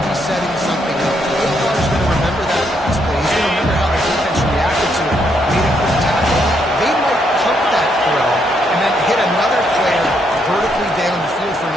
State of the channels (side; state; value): both; normal; correlation 0.75